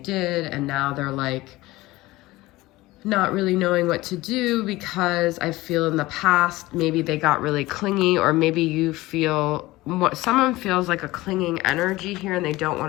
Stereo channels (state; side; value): quieter; right; 19.0 dB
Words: and now they're like not really knowing what to do, because I feel in the past, maybe they got really clingy, or maybe you feel what someone feels like a clinging energy here, and they don't